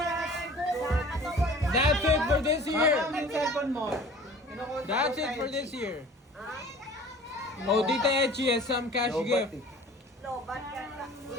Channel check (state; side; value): normal; both; correlation 0.46